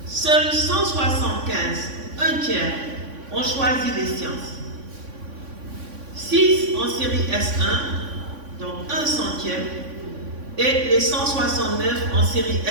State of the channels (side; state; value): left; late; 3.5 ms